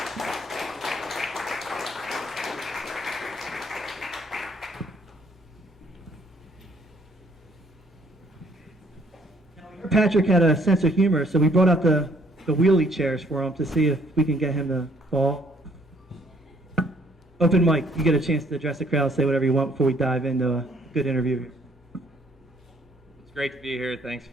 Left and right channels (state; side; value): normal; both; correlation 0.64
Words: Patrick had a sense of humor, so we brought out the wheelie chairs for him to see if we can get him to fall. Open mic, you get a chance to address the crowd, say whatever you want before we dive into a good interview. It's great to be here. Thanks